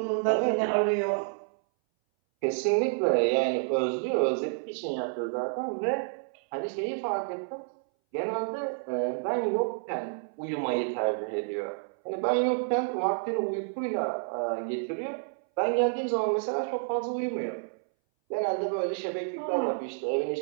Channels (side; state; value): left; silent; 58 dB below the other